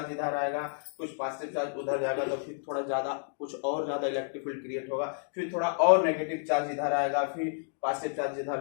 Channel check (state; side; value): silent; right; digital silence